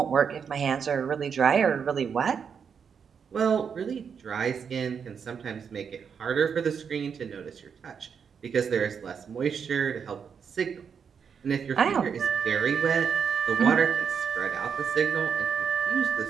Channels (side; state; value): left; quieter; 6.8 dB